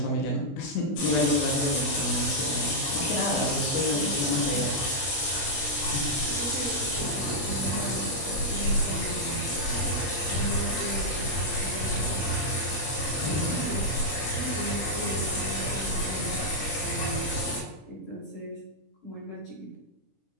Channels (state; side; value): late; right; 20 ms